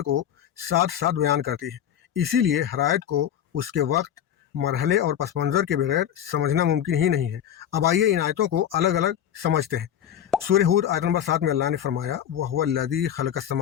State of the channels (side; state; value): right; quieter; 10.0 dB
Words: को साथ साथ बयान करती है। इसीलिए हर आयत को उसके वक्त, मरहले और पस मंज़र के बगैर समझना मुमकिन ही नहीं है। अब आइए इन आयतों को अलग अलग समझते हैं। सूरह हूद आयत नंबर 7 में अल्लाह ने फरमाया, वहुवल्लज़ी खलक़स